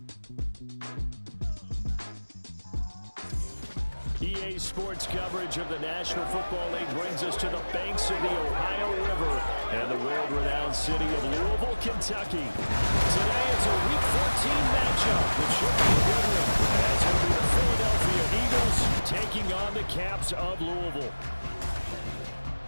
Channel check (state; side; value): inverted; both; correlation -1.00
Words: EA Sports coverage of the National Football League brings us to the banks of the Ohio River and the world-renowned city of Louisville, Kentucky. Today it's a Week 14 matchup that should be a good one, as it'll be the Philadelphia Eagles taking on the Caps of Louisville.